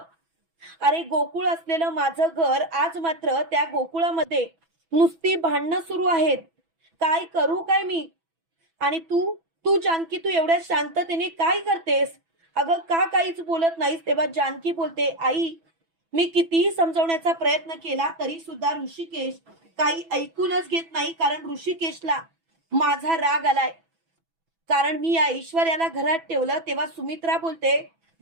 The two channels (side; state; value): left; late; 6.1 ms